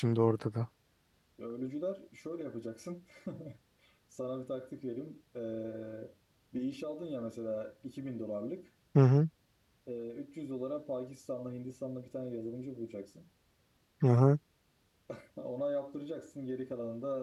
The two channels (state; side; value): identical; both; correlation 1.00